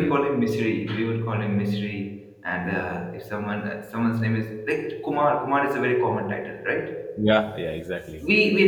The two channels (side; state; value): both; identical; correlation 1.00